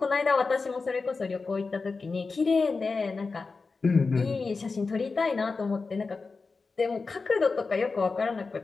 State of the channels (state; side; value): quieter; right; 4.3 dB